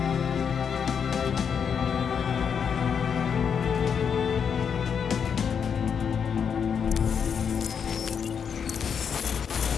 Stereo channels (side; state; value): right; quieter; 7.0 dB